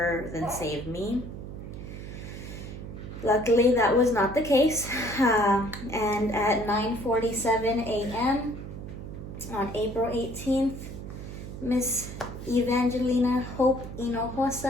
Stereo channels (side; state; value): right; noise; hum, 10 dB below the sound